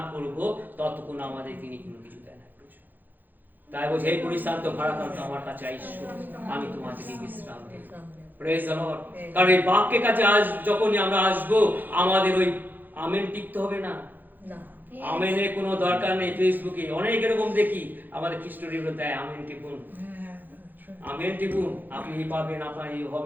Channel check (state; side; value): late; left; 0.087 ms